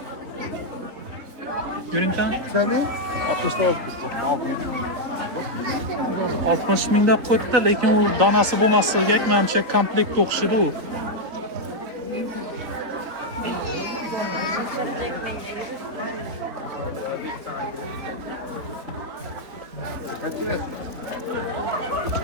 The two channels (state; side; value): late; left; 4.0 ms